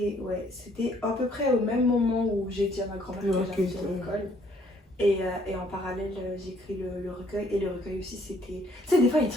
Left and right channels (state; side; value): normal; both; correlation 0.64